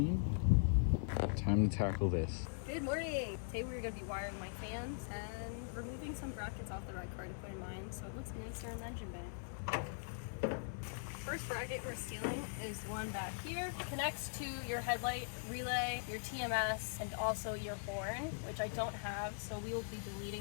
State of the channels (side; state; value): right; silent; 50 dB below the other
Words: Time to tackle this. Good morning! Today we're going to be wiring my fans and removing some brackets off the ride car to put in mine so it looks nicer in the engine bay. First bracket we're stealing is one back here. It connects to your headlight relay, your TMS, and also your horn, which I don't have, so we will be